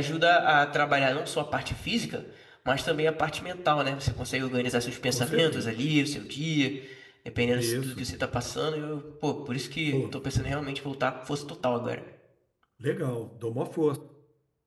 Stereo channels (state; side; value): identical; both; correlation 1.00